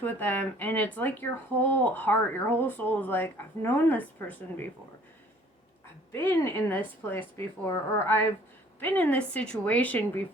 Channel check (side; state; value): both; normal; correlation 0.55